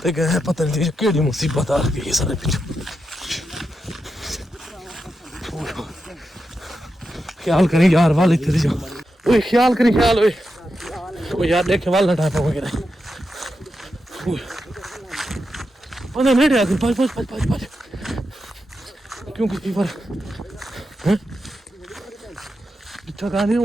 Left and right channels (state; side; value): normal; both; correlation 0.87